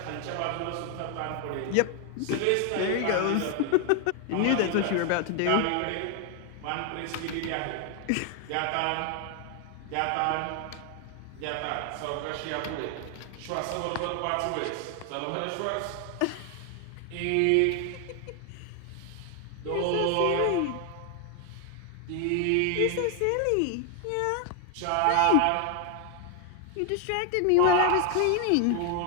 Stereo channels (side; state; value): both; different; correlation 0.00